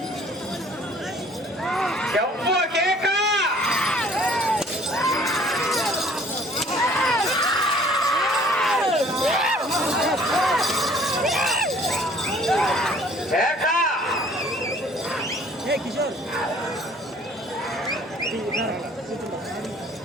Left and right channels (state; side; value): normal; both; correlation 0.55